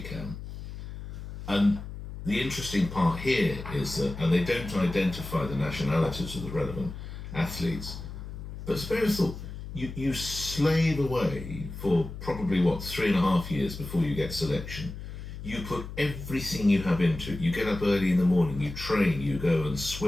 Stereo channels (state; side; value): noise; left; hum, 10 dB below the sound